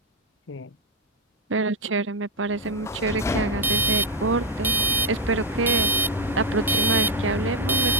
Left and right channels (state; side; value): normal; both; correlation 0.04